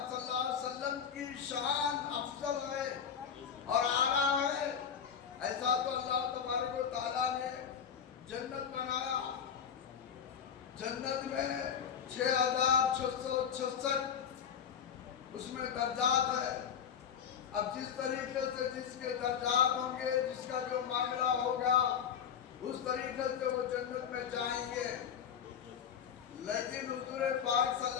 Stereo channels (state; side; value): quieter; right; 7.8 dB